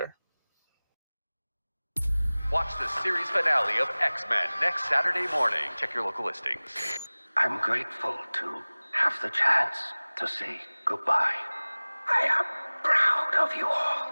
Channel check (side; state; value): both; inverted; correlation -1.00